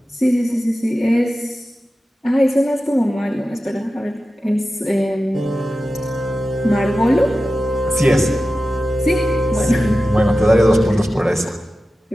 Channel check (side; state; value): both; normal; correlation 0.93